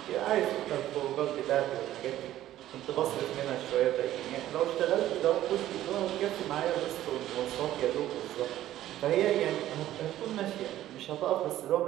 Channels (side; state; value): left; quieter; 13.4 dB